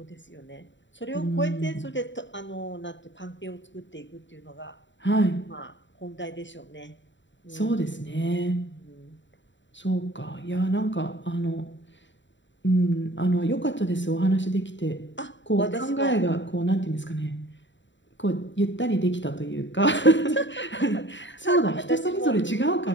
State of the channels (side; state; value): right; late; 0.54 ms